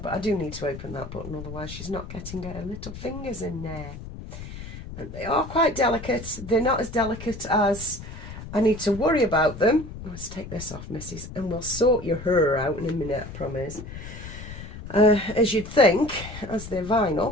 I do need to open that button, otherwise she's not getting her little fingers in there. And they are quite delicate. They're not as delicate as I need to worry about them. Let's take this off, missus, and we'll sort your hair out in a minute, I promise. As you'd think, as they're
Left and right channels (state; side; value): noise; left; rumble, 11 dB below the sound